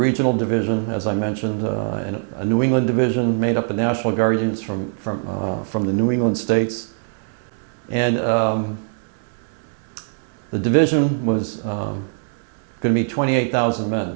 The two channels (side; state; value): left; silent; digital silence